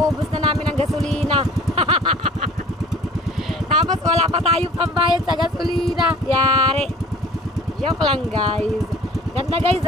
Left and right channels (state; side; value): normal; both; correlation 0.47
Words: na namin ang gasolina. Tapos wala pa tayong pambayad sa gasolina. Yari. Joke lang guys. Ganda guys